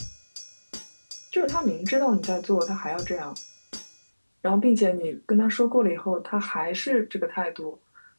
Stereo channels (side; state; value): both; inverted; correlation -1.00